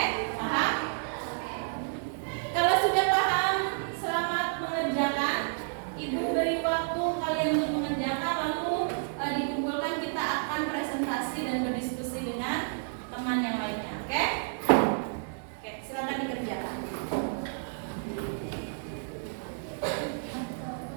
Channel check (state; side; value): silent; left; digital silence